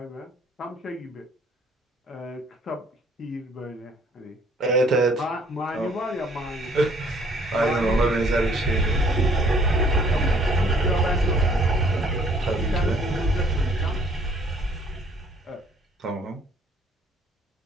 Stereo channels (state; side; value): normal; both; correlation 0.61